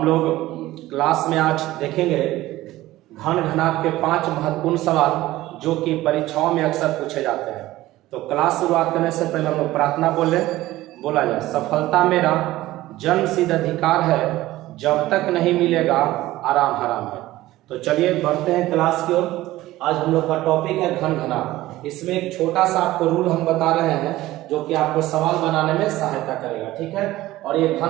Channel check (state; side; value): quieter; left; 16.6 dB